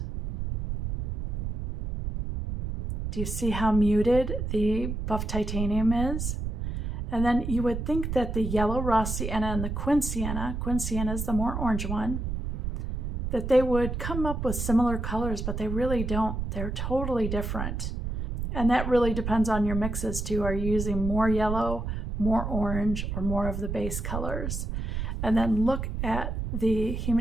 Do you see how muted the buff titanium is? And then you would think that the yellow raw sienna and the Quin Sienna is the more orange one, that they would come up with similar colors, but they really don't. They're totally different. And that really depends on your mixes too. Are you using more yellow, more orange, or more of the base colors? And then look at the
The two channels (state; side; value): noise; right; rumble, 3 dB below the sound